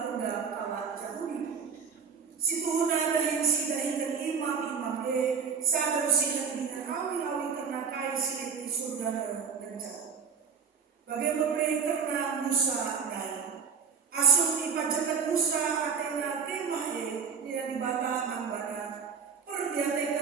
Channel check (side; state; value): left; quieter; 6.7 dB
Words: kalah Yahudi. Situhuna dahin si dahinkan imam-imam sadar sinan dengan awi-awi karena kai silit di surga dan jauh. Bagai pemere karena Musa naik. Asum ipajakan Musa atena kemahe dia dibata mangbana.